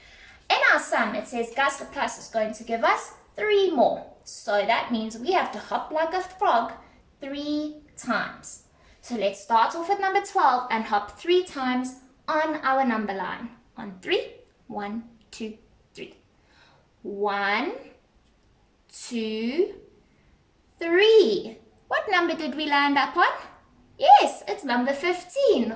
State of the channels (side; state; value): both; identical; correlation 1.00